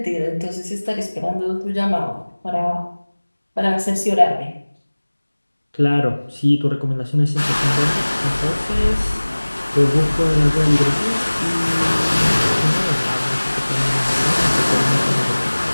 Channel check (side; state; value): both; inverted; correlation -1.00